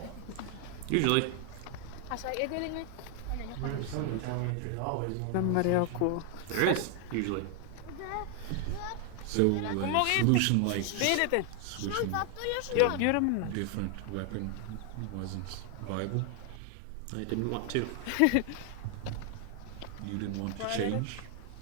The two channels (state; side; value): different; both; correlation 0.00